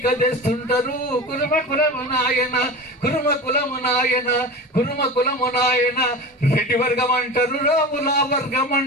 తెస్తుంటారు కుర్మ కులము నాయన కుర్మ కులము నాయన కుర్మ కులము నాయన రెడ్డి వర్గం అంటారు రాముల వర్గం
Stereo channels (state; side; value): normal; both; correlation 0.30